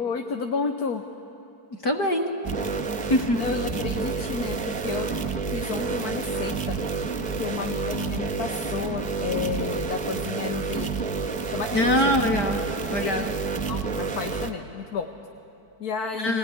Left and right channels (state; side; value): late; right; 4.5 ms